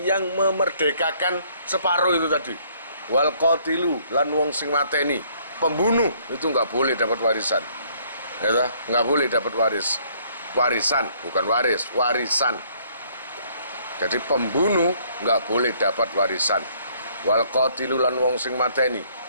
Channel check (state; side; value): inverted; both; correlation -0.63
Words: yang memerdekakan separuh itu tadi. Wal qatilu lan wong sing mateni, pembunuh itu nggak boleh dapat warisan. Ya, nggak boleh dapat warisan, bukan waris, warisan. Jadi pembunuh nggak boleh dapat warisan. Wal qatilu lan wong sing mateni,